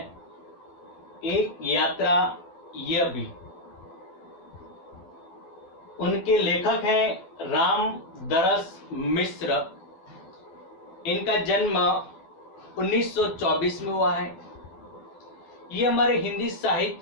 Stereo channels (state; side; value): late; right; 12 ms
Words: एक यात्रा यह भी, उनके लेखक हैं रामदरस मिश्र। इनका जन्म 1924 में हुआ है। ये हमारे हिंदी